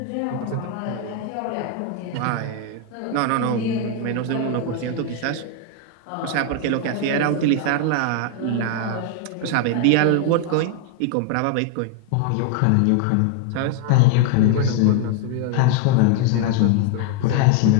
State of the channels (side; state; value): both; different; correlation 0.00